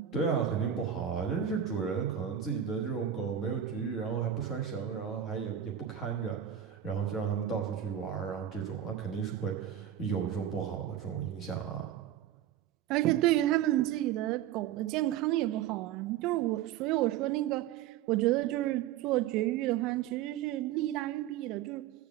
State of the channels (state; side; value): quieter; left; 10.1 dB